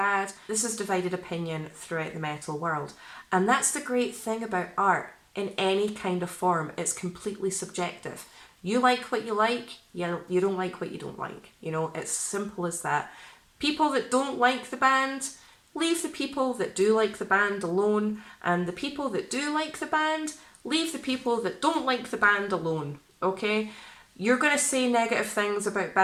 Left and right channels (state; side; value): identical; both; correlation 1.00